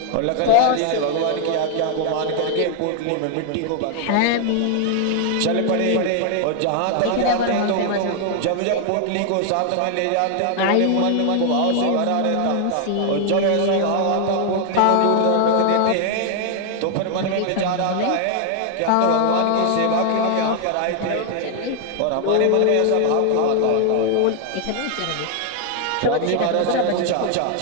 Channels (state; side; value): different; both; correlation 0.00